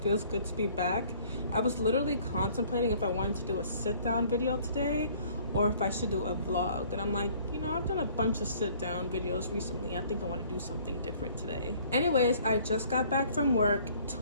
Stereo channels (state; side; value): inverted; both; correlation -0.57